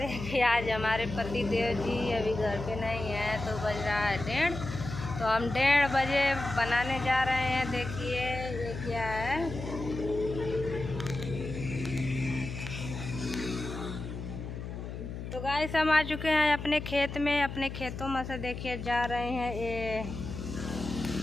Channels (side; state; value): left; noise; hum, 8 dB below the sound